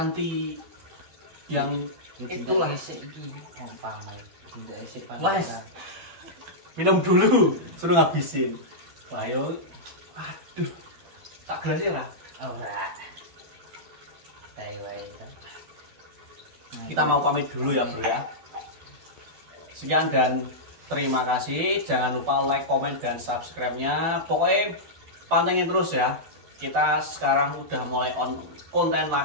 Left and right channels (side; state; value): left; late; 12 ms